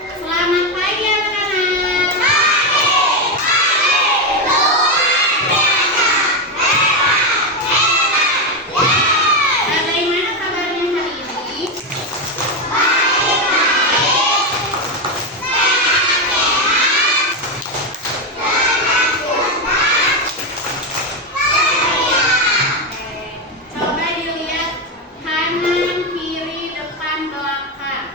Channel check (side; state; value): both; normal; correlation 0.09